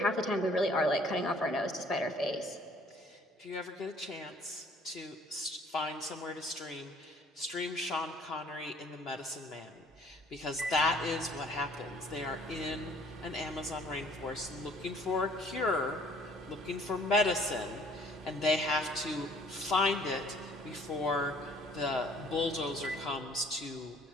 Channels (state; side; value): normal; both; correlation 0.57